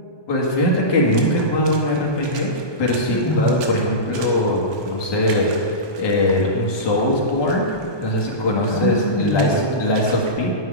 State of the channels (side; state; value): right; late; 1.2 ms